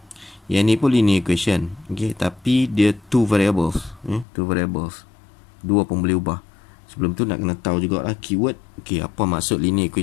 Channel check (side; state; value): right; drops out; at 4.2 s